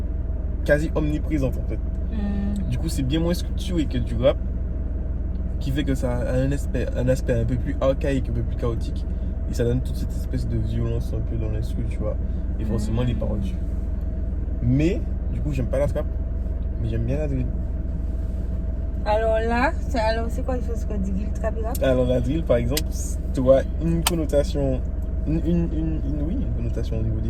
omniprésentes en fait. Du coup, c'est bien moins structuré que du rap, qui fait que ça a un aspect un peu plus archaïque, un peu plus chaotique. Et ça donne toute cette espèce de violence un peu dans l'instru, tu vois. Et forcément, les paroles dessus. Mais, du coup, j'aime pas la trap, mais j'aime bien la drill. Alors là, c'est quoi il faut se dire le trap et rap? Alors, la drill, par exemple, tu vois une connotation, une connotation au niveau des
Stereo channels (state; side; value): identical; both; correlation 1.00